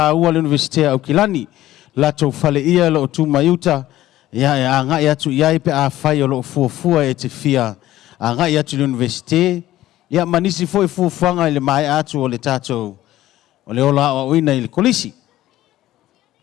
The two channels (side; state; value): right; quieter; 14.7 dB